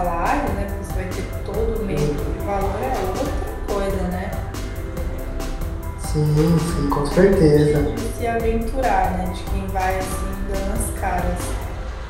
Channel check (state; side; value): identical; both; correlation 1.00